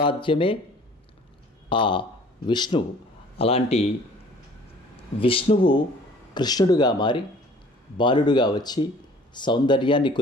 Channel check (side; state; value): both; normal; correlation 0.51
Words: ఆ విష్ణువు. అలాంటి విష్ణువు కృష్ణుడుగా మారి బాలుడుగా వచ్చి సౌందర్యాన్ని